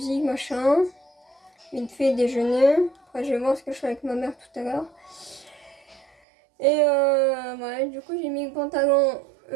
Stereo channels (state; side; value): drops out; left; at 6.1 s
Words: machin. Vite fait déjeuner. Après, je vais voir ce que je fais avec ma mère tout à l'heure. Et ouais, du coup, j'ai mis le pantalon